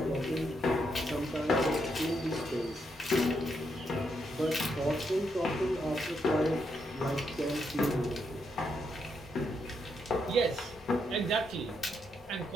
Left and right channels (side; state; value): both; normal; correlation 0.79